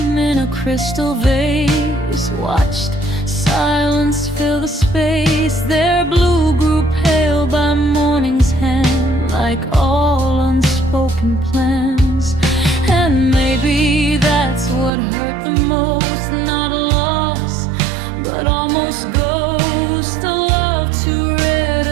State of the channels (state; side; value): drops out; left; at 14.9 s